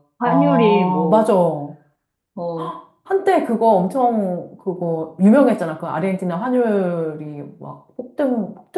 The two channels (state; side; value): identical; both; correlation 1.00